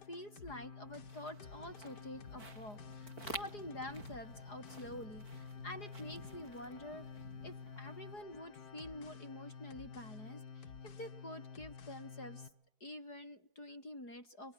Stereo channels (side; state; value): right; late; 4.5 ms